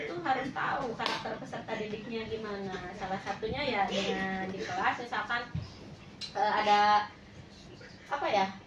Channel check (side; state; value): both; identical; correlation 1.00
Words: tuh harus tahu karakter peserta didiknya gimana. Salah satunya ya dengan di kelas misalkan ada apa ya,